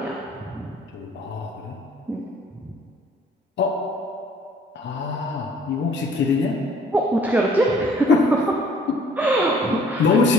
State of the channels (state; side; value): normal; both; correlation 0.56